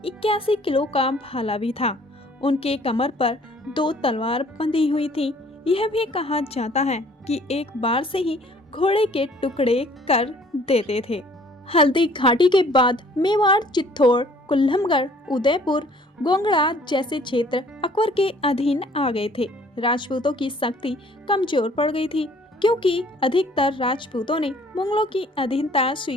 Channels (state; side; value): normal; both; correlation 0.56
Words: 81 किलो का भाला भी था। उनके कमर पर 2 तलवार बंधी हुई थी। यह भी कहा जाता है कि एक बार से ही घोड़े के टुकड़े कर देते थे। हल्दी घाटी के बाद मेवाड़, चित्तौड़, कुल्लमगढ़, उदयपुर, गोंगड़ा जैसे क्षेत्र अकबर के अधीन आ गए थे। राजपूतों की शक्ति कमजोर पड़ गई थी क्योंकि अधिकतर राजपूतों ने मुगलों की अधीनता